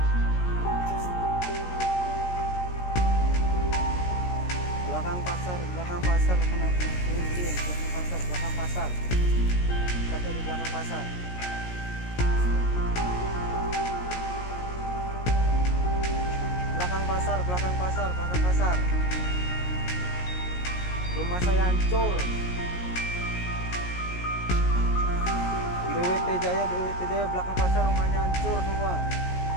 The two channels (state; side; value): late; right; 17 ms